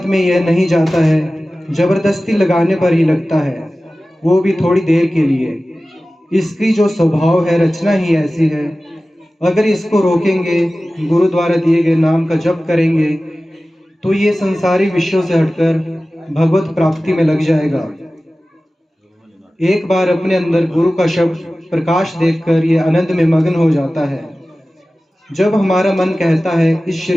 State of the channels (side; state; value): both; normal; correlation 0.96